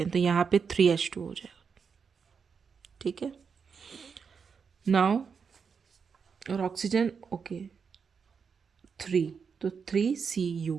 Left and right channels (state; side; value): quieter; left; 6.0 dB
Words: हैं, तो यहाँ पे 3H2 हो जाएगा, ठीक है। नाउ और ऑक्सीजन ओके 3, तो